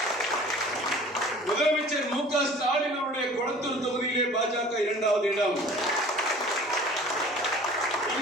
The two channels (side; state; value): both; normal; correlation 0.46